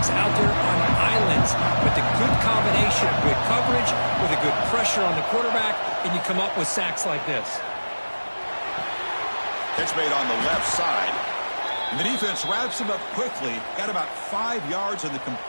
out there on islands, but the good combination of good coverage with a good pressure on the quarterback, and you come up with sacks like this. Catch made on the left side. And the defense wraps him up quickly. Got about 5 yards on the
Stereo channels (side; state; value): both; inverted; correlation -1.00